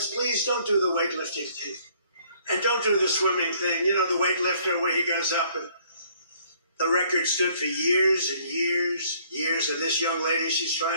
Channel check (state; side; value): inverted; both; correlation -0.61